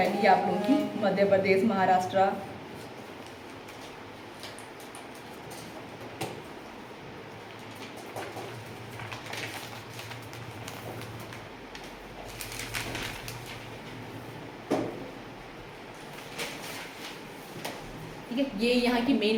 है, आप लोगों की मध्य प्रदेश, महाराष्ट्र। ठीक है, ये यहाँ की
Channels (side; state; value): both; identical; correlation 1.00